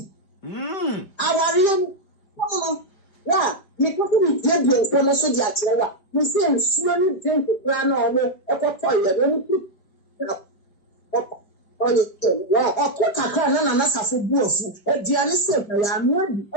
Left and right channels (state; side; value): late; right; 5.1 ms